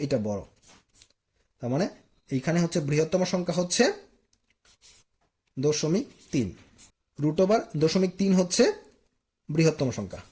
এটা বড়। তার মানে এইখানে হচ্ছে বৃহত্তম সংখ্যা হচ্ছে 0.3। √0.3 হচ্ছে বৃহত্তম সংখ্যা।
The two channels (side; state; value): both; identical; correlation 1.00